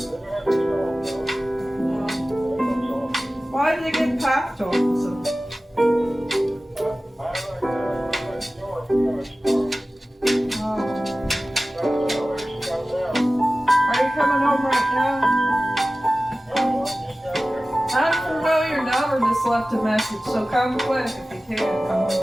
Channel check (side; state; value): both; normal; correlation 0.96